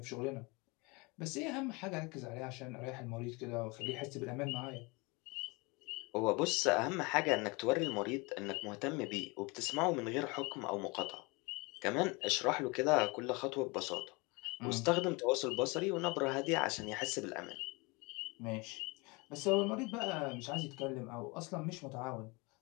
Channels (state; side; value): quieter; right; 27.0 dB